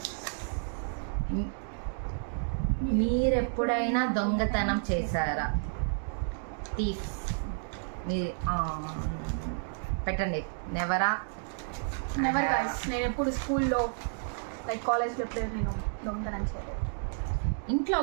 మీరెప్పుడైనా దొంగతనం చేశారా? థీఫ్ పెట్టండి. నెవరా? Never guys. నేను ఎప్పుడు స్కూల్లో లైక్ కాలేజ్లో ఎప్పుడు నేను దొంగతనం చేయలేదు. ఇంట్లో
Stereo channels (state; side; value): silent; left; digital silence